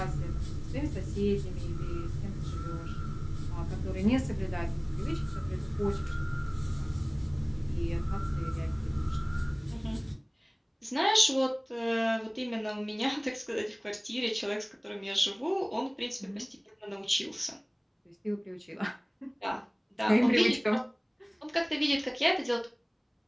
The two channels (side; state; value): both; identical; correlation 1.00